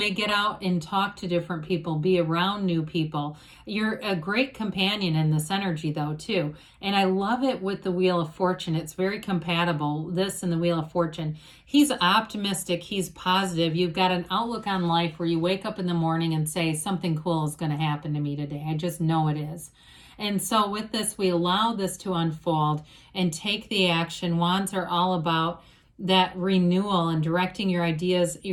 get out and talk to different people, be around new people. You're a great companion in this energy, though, too. And I love it with the Wheel of Fortune. It's very compatible, this and the Wheel of Fortune. He's optimistic. He's positive. You've got an outlook on life where you wake up in the morning and say, something cool is going to happen to me today. I just know it is. And so with this, we allow this to unfold and take the action. Wands are all about that renewal and directing your ideas,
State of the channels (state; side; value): identical; both; correlation 1.00